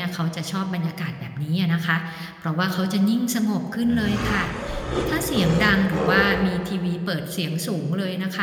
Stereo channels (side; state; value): both; identical; correlation 1.00